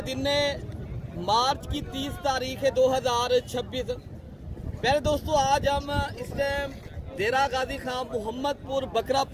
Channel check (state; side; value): identical; both; correlation 1.00